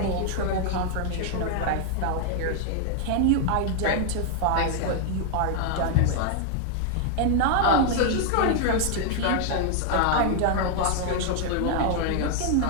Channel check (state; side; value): different; both; correlation 0.00